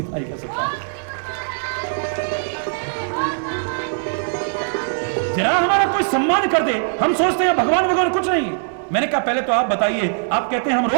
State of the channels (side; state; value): left; silent; 65 dB below the other